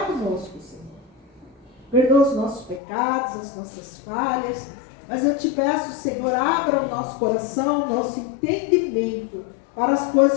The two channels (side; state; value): right; drops out; at 2.8 s